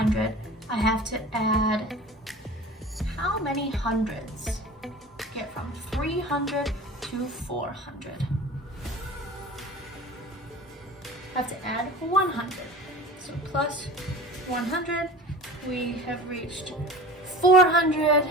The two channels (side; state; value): both; normal; correlation 0.38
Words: I have to add how many hundreds? Get from 300 to 400. I have to add 100. So plus 100, we have reached 400